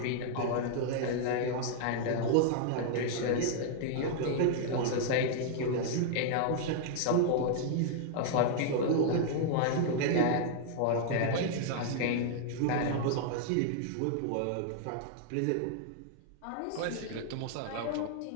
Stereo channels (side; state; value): both; different; correlation -0.01